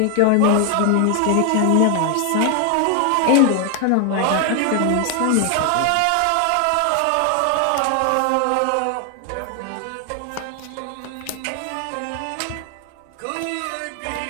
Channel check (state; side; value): different; both; correlation 0.01